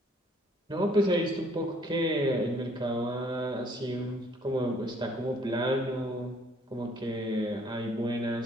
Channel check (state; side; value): normal; both; correlation 0.61